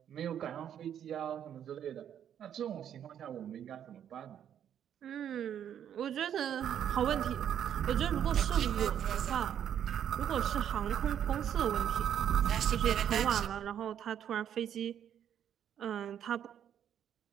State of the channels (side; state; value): left; quieter; 9.6 dB